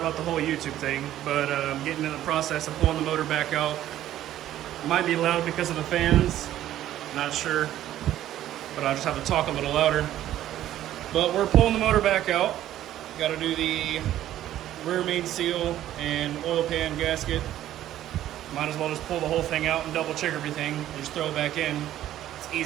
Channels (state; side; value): quieter; left; 12.8 dB